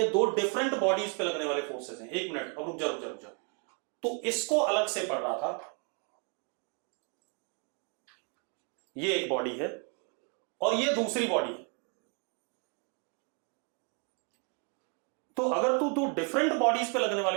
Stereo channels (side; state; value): left; quieter; 37.6 dB